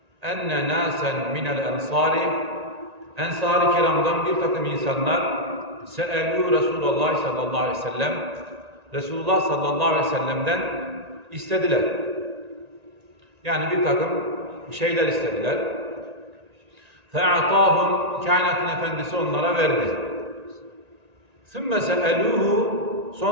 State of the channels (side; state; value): left; late; 1.9 ms